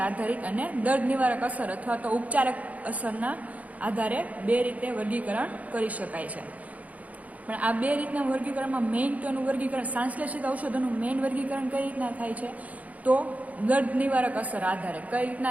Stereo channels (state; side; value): late; left; 0.072 ms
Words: આધારિત અને દર્દ નિવારક અસર અથવા તો ઉપચારક અસરના આધારે બે રીતે વર્ગીકરણ કરી શકાય છે. પણ આ બે રીતના વર્ગીકરણમાં મેઇન તો એનું વર્ગીકરણ સંશ્લેષિત ઔષધોનું મેઇન વર્ગીકરણ કઈ રીતના થાય છે તો દર્દ નિવારક અસર આધારે, કઈ